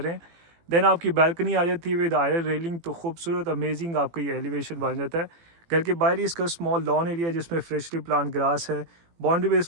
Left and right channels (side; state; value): left; late; 18 ms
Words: रहे हैं। देन आपकी बालकनी आ जाती है विद आयरन रेलिंग, तो खूबसूरत अमेजिंग आपका ये एलिवेशन बन जाता है। घर के बाहर ही इसका स्मॉल लॉन एरिया जिसमें फ्रेशली प्लांट ग्रास है। बाउंड्री पे इस